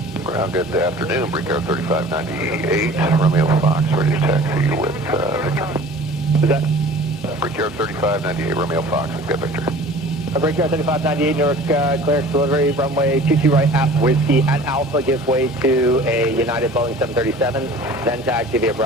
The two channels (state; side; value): normal; both; correlation 0.44